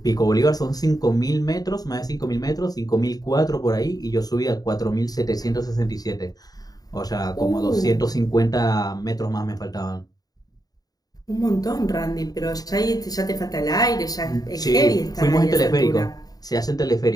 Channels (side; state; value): right; late; 0.18 ms